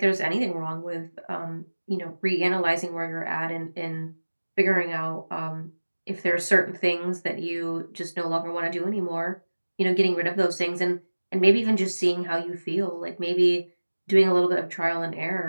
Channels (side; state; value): both; inverted; correlation -1.00